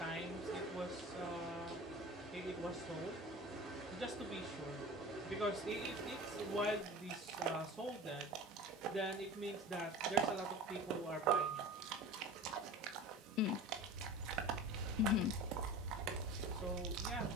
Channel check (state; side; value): normal; both; correlation 0.36